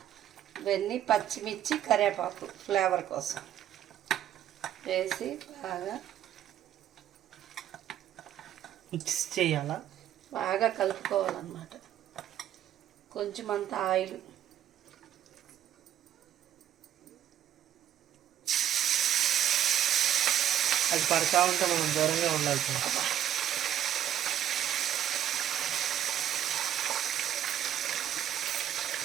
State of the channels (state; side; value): quieter; left; 11.1 dB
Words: ఇవన్నీ పచ్చిమిర్చి కరివేపాకు ఫ్లేవర్ కోసం వేసి మిక్స్ చేయాలా, బాగా కలుపుకోవాలన్నమాట. కొంచెం అంత ఆయిల్, అది పడతా ఉంటే మనం దూరంగా ఉండాలి.